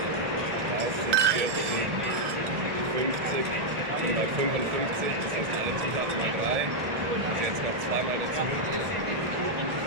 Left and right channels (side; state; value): left; late; 1.7 ms